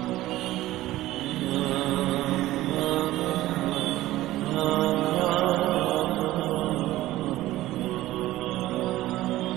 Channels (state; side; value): quieter; left; 16.0 dB